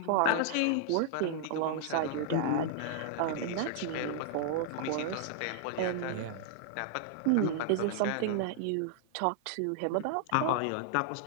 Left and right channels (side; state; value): both; different; correlation -0.01